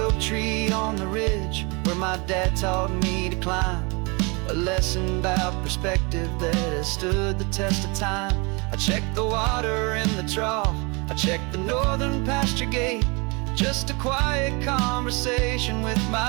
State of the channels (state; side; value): quieter; left; 29.2 dB